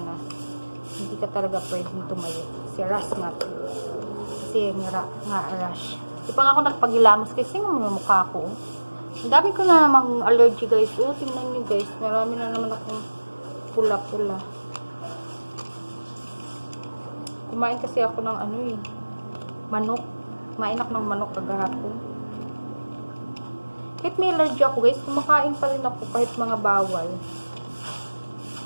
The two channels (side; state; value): both; inverted; correlation -1.00